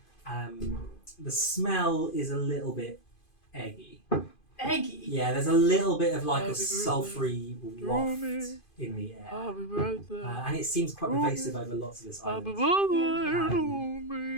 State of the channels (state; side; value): late; right; 2.5 ms